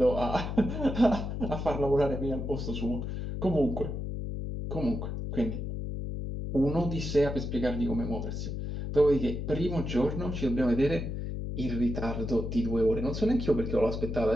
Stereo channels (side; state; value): left; noise; hum, 4 dB below the sound